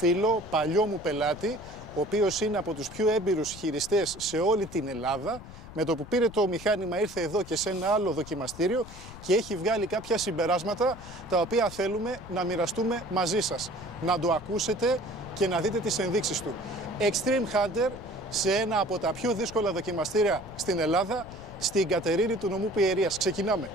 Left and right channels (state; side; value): noise; left; rumble, 16 dB below the sound